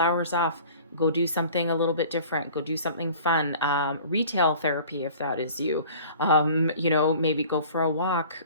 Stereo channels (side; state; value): both; inverted; correlation -0.46